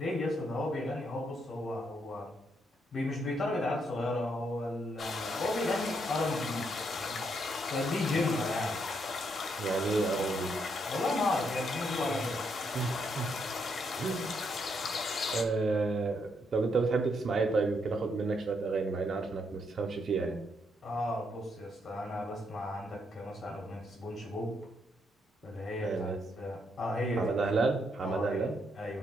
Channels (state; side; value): normal; both; correlation 0.76